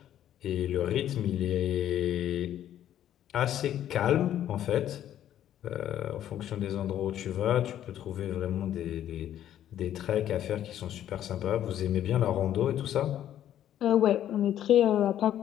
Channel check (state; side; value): quieter; right; 11.3 dB